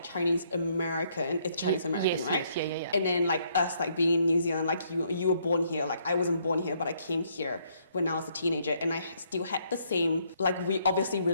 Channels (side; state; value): both; inverted; correlation -0.70